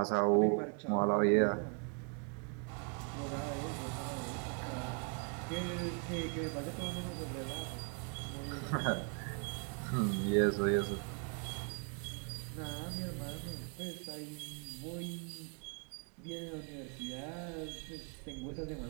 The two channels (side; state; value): left; quieter; 39.5 dB